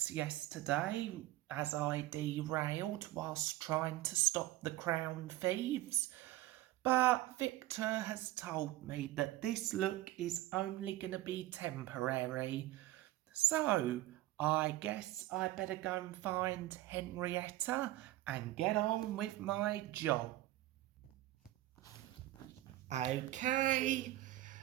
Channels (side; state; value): left; quieter; 16.1 dB